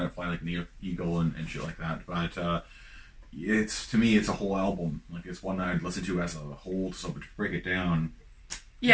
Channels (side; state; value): both; identical; correlation 1.00